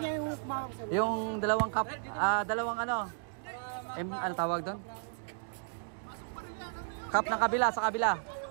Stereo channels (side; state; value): left; silent; digital silence